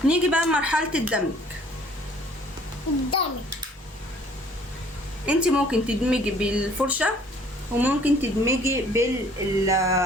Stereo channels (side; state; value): both; normal; correlation 0.56